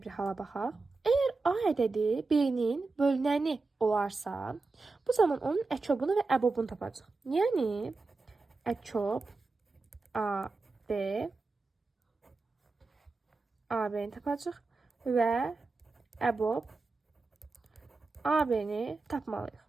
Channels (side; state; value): left; quieter; 3.8 dB